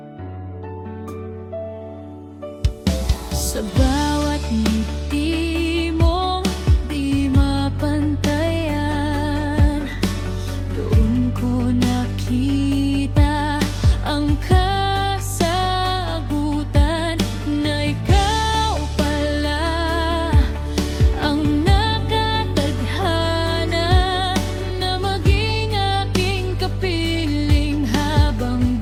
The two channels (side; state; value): both; identical; correlation 1.00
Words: Sa bawat ngiti mong di mapantayan, doon ko nakita ang kasagutan na ikaw pala ang nakatadhana na maging aking kapiling habang